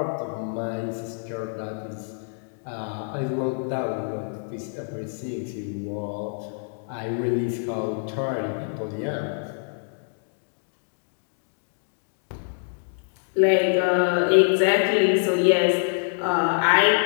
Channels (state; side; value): silent; right; digital silence